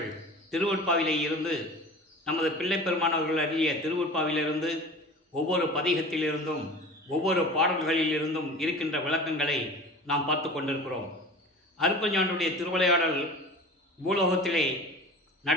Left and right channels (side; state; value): both; normal; correlation 0.37